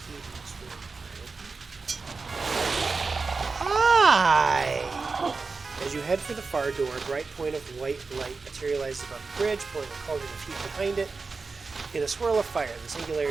in this room. Can I open it? Hi! As you head for the far door, a bright point of white light materializes above the bridge, pulling a cauldron of heat behind it. In a swirl of fire, the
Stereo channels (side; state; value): left; quieter; 4.3 dB